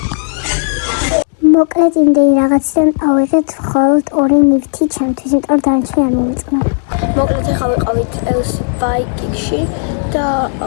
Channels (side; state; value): right; silent; digital silence